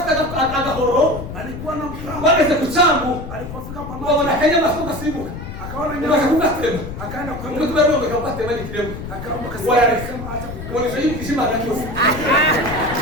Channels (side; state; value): left; noise; rumble, 9 dB below the sound